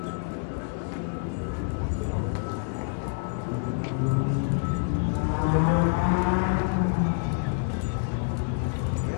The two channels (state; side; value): silent; right; 59 dB below the other